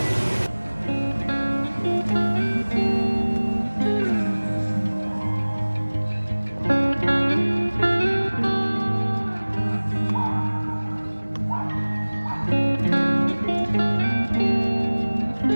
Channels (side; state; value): both; inverted; correlation -1.00